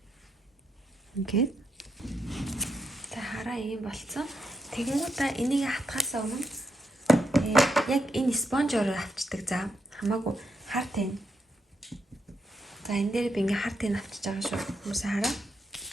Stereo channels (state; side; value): normal; both; correlation 0.81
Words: Ингээд. За хараа ийм болцсон. Тэгэнгүүтээ энийг хатгахаас өмнө яг энэ спонжоор авчдаг. За хамаагүй хар тань. За энэ дээр би ингээ хар тань авчиж байгаа шүү. Хүмүүсээ хараа.